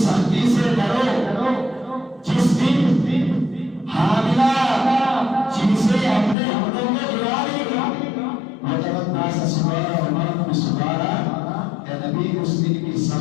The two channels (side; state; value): right; drops out; at 6.4 s